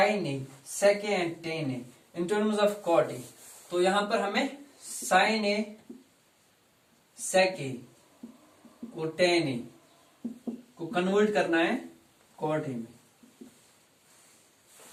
A, sec A and tan A in terms of cot A. तो यहां पर हमें साइन ए, सेक ए और टेन ए को कन्वर्ट करना है कॉट ए में।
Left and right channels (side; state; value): both; identical; correlation 1.00